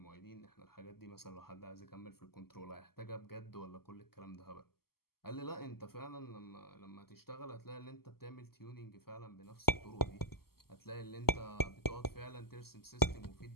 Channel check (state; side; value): late; right; 0.95 ms